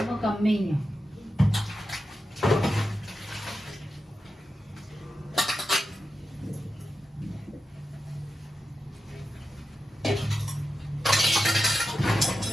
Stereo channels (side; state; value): both; normal; correlation 0.89